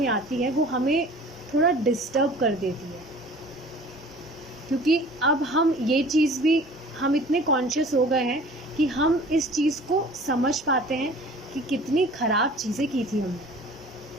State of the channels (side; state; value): both; normal; correlation 0.46